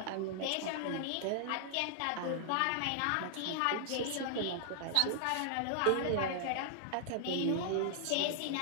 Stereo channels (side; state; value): both; different; correlation -0.01